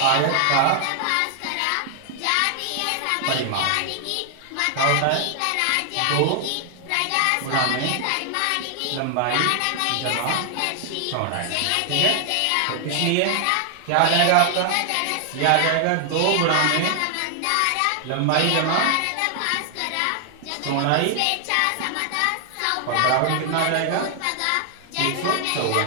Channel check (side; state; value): both; different; correlation 0.00